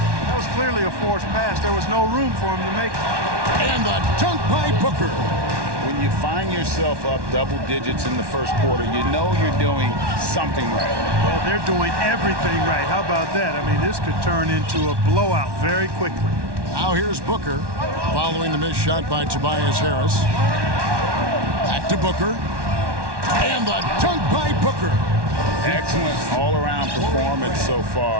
That was clearly a forced pass. There was no room for him to make it. And the dunk by Booker. When you find yourself up double digits in the first quarter, you know you're doing something right. Well, they're doing everything right. How about that? I mean, this could turn into a blowout very quickly. Now here's Booker, following the missed shot by Tobias Harris. Back to Booker. And the dunk by Booker. Excellent all-around performance so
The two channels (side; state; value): left; late; 1.1 ms